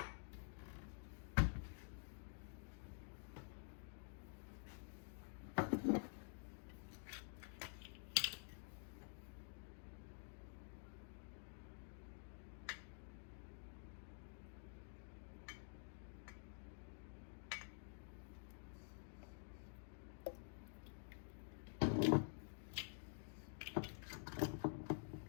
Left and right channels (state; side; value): silent; right; digital silence